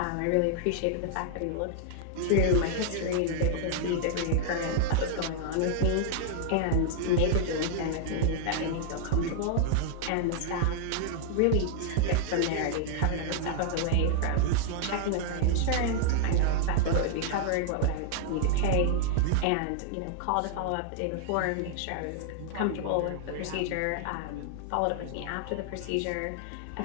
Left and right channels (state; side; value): different; both; correlation -0.01